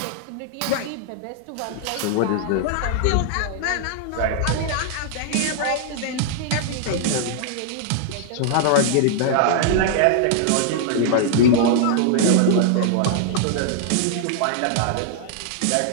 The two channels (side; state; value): both; different; correlation -0.01